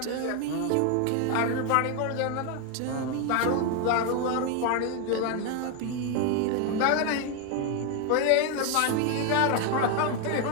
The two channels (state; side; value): different; both; correlation 0.01